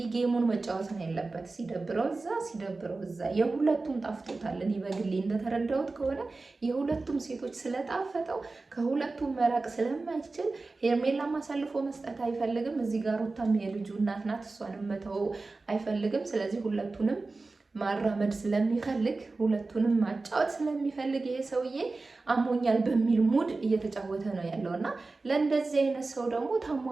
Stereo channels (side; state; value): left; quieter; 3.6 dB